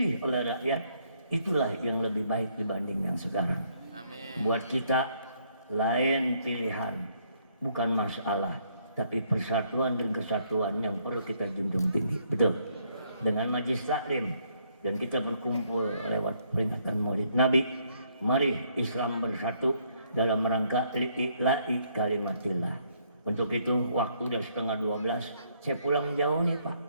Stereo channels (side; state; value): both; inverted; correlation -0.69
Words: oleh rakyat itulah yang lebih baik dibanding yang sekarang. Amin. Buat kita lain pilihan, bukan masalah, tapi persatuan dan kesatuan yang perlu kita junjung tinggi. Betul. Dengan majlis taklim dan kita berkumpul lewat peringatan Maulid Nabi, mari Islam bersatu dalam rangka li'ila'i kalimatillah. Untuk itu waktu udah 11:30, saya pulang jauh nih Pak.